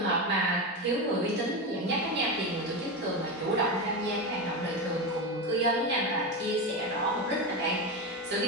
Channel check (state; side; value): normal; both; correlation 0.17